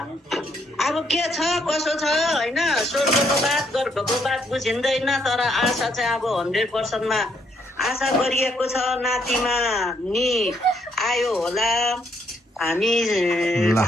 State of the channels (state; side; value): normal; both; correlation 0.72